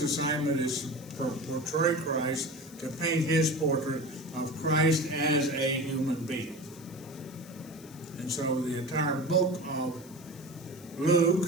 is to portray Christ, to paint his portrait of Christ as a human being. And so the entire book of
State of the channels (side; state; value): left; noise; hiss, 22 dB below the sound